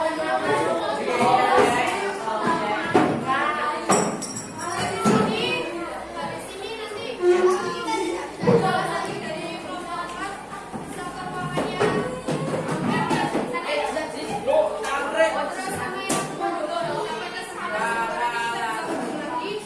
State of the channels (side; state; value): both; identical; correlation 1.00